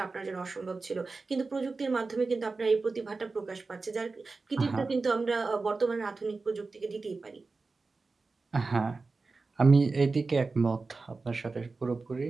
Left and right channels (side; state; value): left; quieter; 3.9 dB